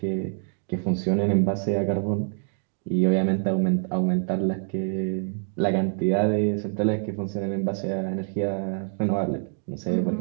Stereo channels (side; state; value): left; silent; digital silence